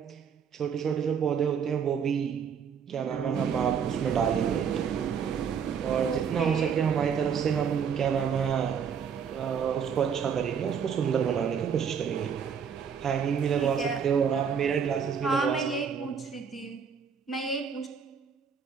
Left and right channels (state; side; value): quieter; left; 7.0 dB